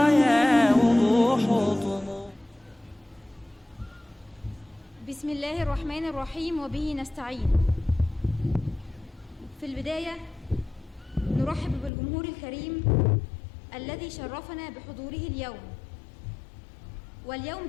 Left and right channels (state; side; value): drops out; right; at 11.9 s